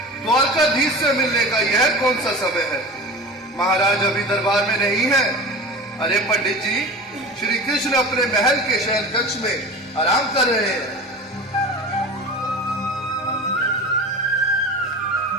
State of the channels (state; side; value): normal; both; correlation 0.33